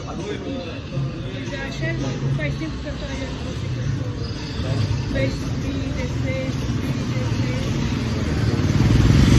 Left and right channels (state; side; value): identical; both; correlation 1.00